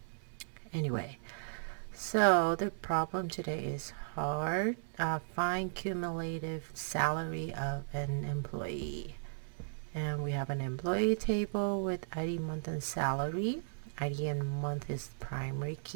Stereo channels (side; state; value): left; silent; 54 dB below the other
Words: Anyway, so the problem today is hard. Find cumulative salary of an employee. And we have an employee table with ID, month, and salary. ID and month is primary